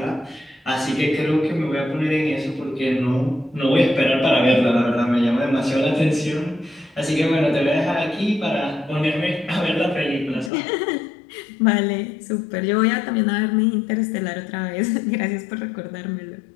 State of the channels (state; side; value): drops out; right; at 10.5 s